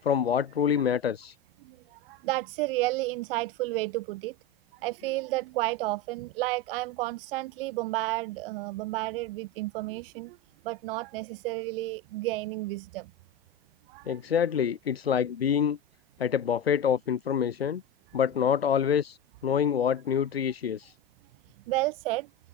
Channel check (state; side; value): normal; both; correlation 0.21